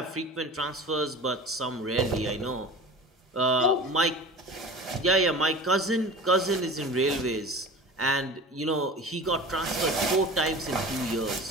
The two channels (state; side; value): normal; both; correlation 0.36